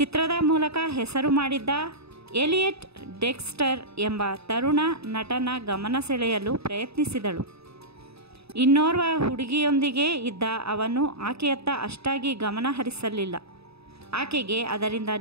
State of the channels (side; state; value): left; late; 0.78 ms